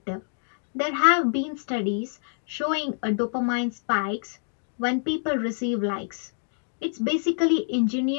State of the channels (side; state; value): right; silent; digital silence